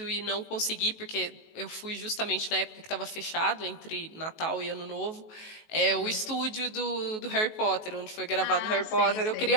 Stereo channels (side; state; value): right; late; 19 ms